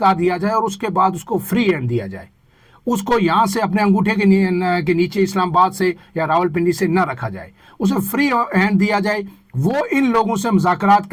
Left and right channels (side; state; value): both; identical; correlation 1.00